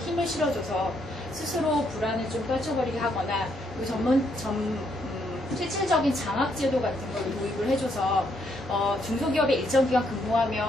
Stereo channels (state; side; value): normal; both; correlation 0.74